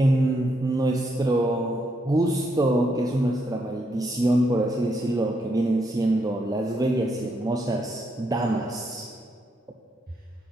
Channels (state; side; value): normal; both; correlation 0.78